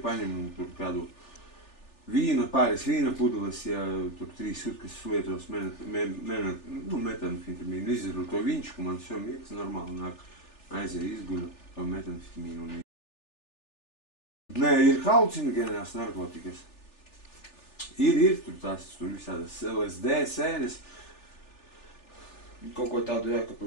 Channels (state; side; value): late; right; 3.4 ms